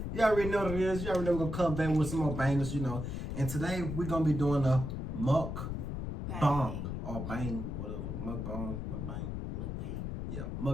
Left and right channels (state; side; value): noise; left; rumble, 4 dB below the sound